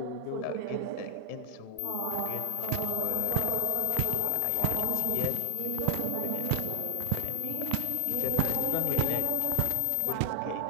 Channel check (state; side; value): different; both; correlation 0.00